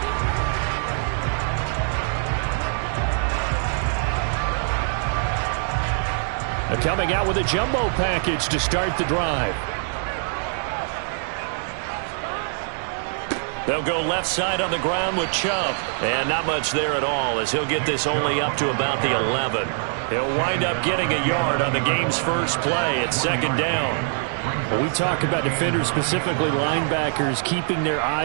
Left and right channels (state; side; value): silent; left; digital silence